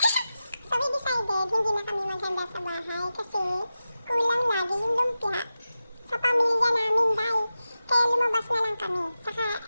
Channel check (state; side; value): inverted; both; correlation -0.93